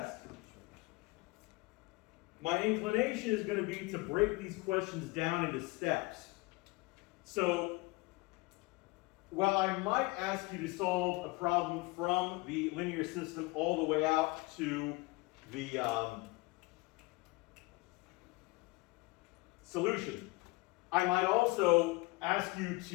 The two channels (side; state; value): right; quieter; 23.9 dB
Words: my inclination is going to be to break these questions down into steps. So, while I might ask you to solve a problem from the linear system all the way out to the solution, I might also ask you